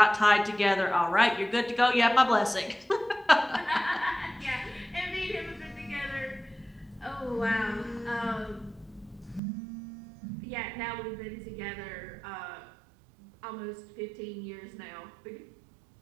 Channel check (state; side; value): drops out; left; at 9.4 s